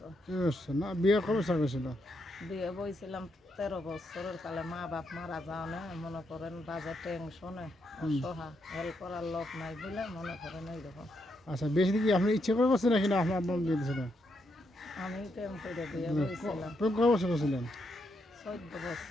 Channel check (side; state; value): both; normal; correlation 0.80